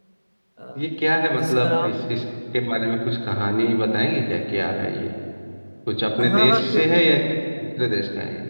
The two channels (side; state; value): both; inverted; correlation -1.00